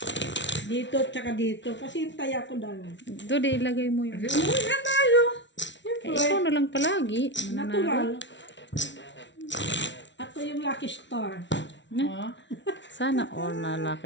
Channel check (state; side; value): late; right; 0.53 ms